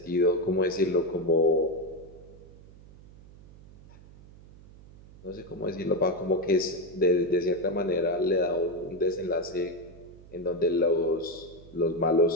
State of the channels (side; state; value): right; noise; hum, 21 dB below the sound